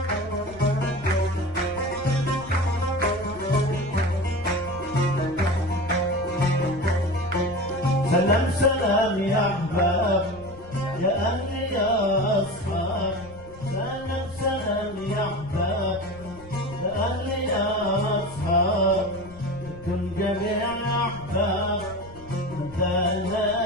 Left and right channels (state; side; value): noise; left; rumble, 19 dB below the sound